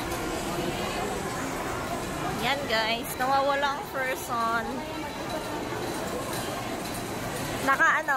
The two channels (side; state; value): both; identical; correlation 1.00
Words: Yan guys, nawawala ang person.